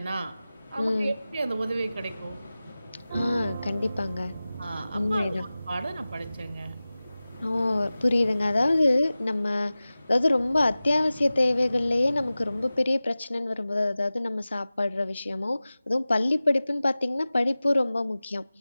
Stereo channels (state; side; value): inverted; both; correlation -0.97